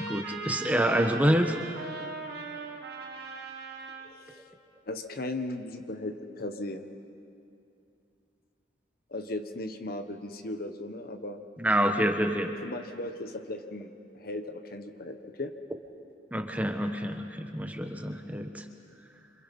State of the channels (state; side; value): normal; both; correlation 0.71